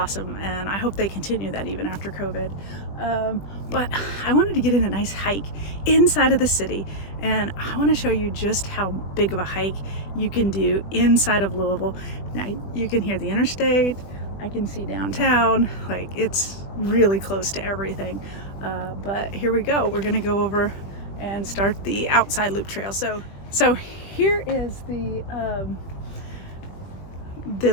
and I hope they continue that even after COVID. But I wanted to get in a nice hike inside of the city, and I want to show you just how big of a hike you can do inside of Louisville. Now you can hear the interstate, I can see downtown, like it's really close to everything. But here we go, we're gonna go over and start the outside loop trail. So here is the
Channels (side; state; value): right; late; 20 ms